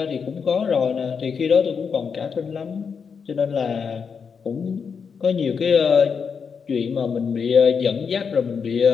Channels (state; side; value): quieter; right; 6.1 dB